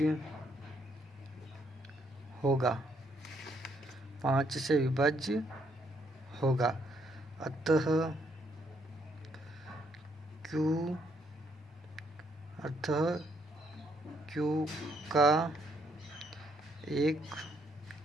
होगा, 5 से विभाज्य होगा। अतः क्यू का एक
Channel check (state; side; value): normal; both; correlation 0.71